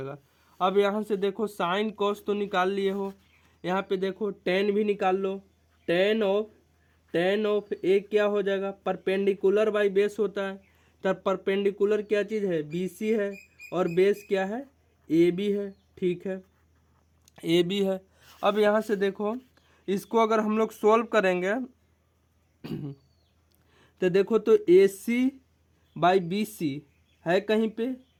अब यहाँ से देखो साइन कॉस तो निकाल लिए हो, यहाँ पे देखो टेन भी निकाल लो। टेन ऑफ ए क्या हो जाएगा, परपेंडिकुलर बाई बेस होता है, तब परपेंडिकुलर क्या चीज़ है, बी सी है, और बेस क्या है, ए बी है। ठीक है, ए बी है। अब यहाँ से देखो इसको अगर हम लोग सोल्व करेंगे तो देखो तो ए सी बाई बी सी है कहीं पे,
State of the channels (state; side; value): identical; both; correlation 1.00